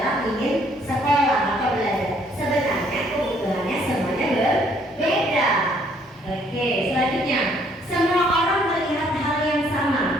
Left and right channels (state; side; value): normal; both; correlation 0.65